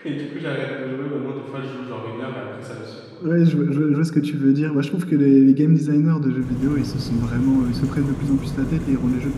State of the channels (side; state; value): both; identical; correlation 1.00